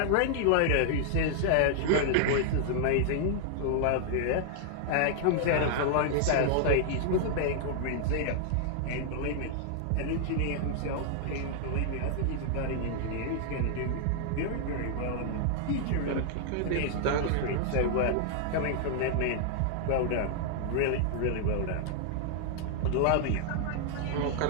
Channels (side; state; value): both; different; correlation -0.01